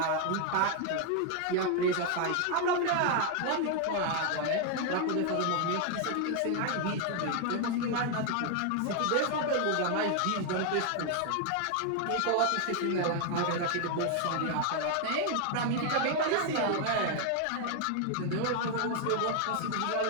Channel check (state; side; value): different; both; correlation 0.01